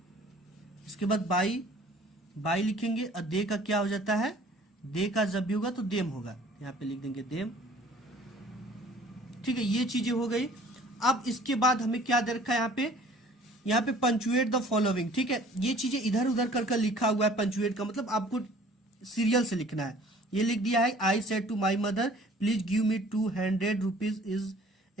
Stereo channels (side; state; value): both; normal; correlation 0.52